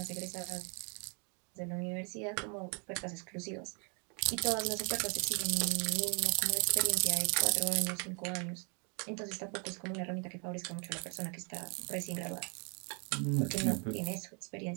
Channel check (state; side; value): quieter; left; 36.8 dB